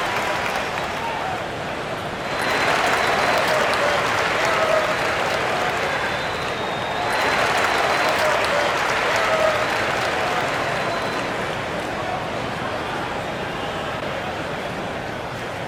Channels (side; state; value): both; identical; correlation 1.00